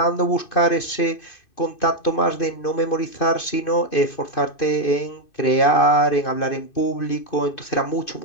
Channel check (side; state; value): right; late; 2.5 ms